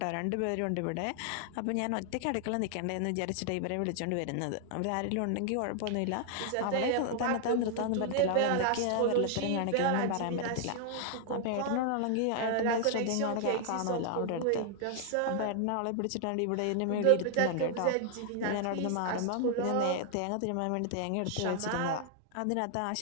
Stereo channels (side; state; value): both; different; correlation 0.00